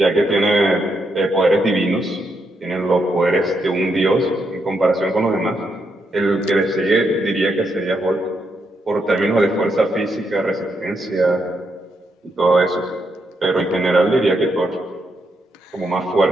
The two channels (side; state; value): both; normal; correlation 0.80